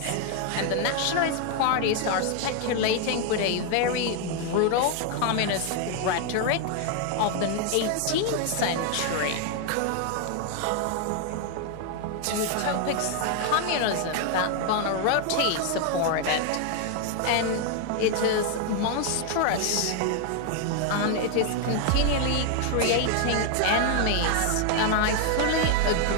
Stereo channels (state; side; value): different; both; correlation 0.00